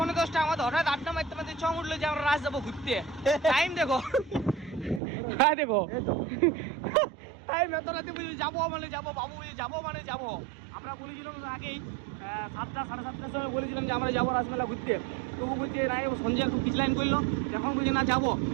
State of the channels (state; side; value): drops out; left; at 5.0 s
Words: আমাদের হঠাৎ আড্ডা মারতে মারতে চং উঠলো যে আমরা রাজ যাবো ঘুরতে। টাইম দেখো, হ্যাঁ দেখো টাইম এত রাতে বুঝি যাবো মানে যাবো, বাবু বুঝি যাবো মানে যাবো। আমরা বলেছিলাম আগেই 7টা 7:30টার সময় বলেছিলাম যে আমরা যাবো রাসমেলা ঘুরতে। তবু বলছে না, সঞ্জয় একটু পিছলাইন করলো, এখন বলছে না যাবো,